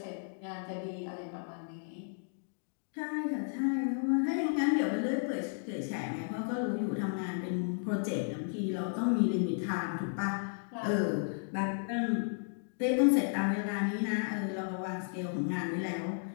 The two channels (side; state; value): right; silent; digital silence